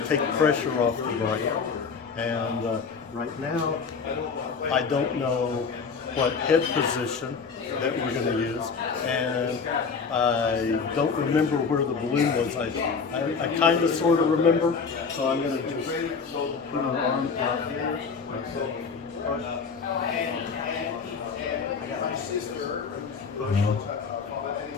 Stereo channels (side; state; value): right; quieter; 5.4 dB